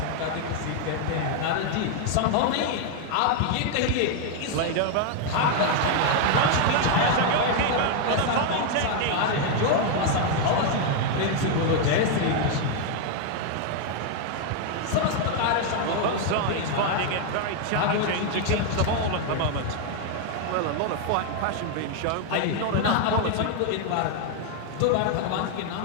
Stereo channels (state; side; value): different; both; correlation 0.00